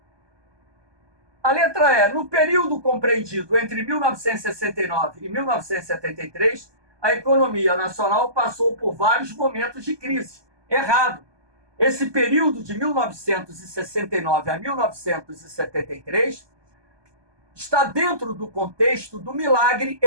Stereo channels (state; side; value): late; left; 1.2 ms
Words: A letra E, no período compreendido entre 1969 e 1973, a economia nacional passou por vários momentos de crise. Errado. Esse período de 1969 a 1973 está dentro do contexto do milagre